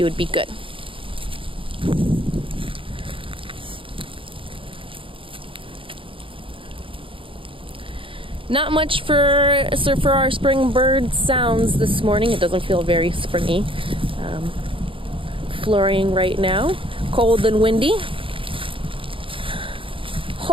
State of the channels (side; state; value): left; late; 0.25 ms